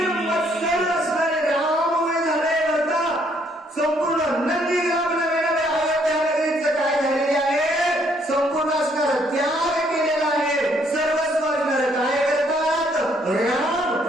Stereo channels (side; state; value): both; normal; correlation 0.68